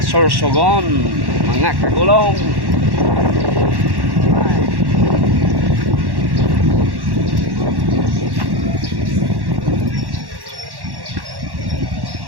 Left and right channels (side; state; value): left; late; 1.1 ms